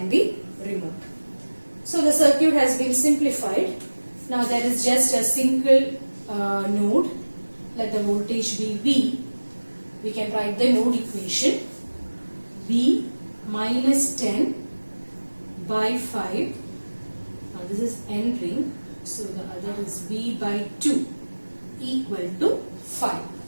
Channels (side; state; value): both; inverted; correlation -1.00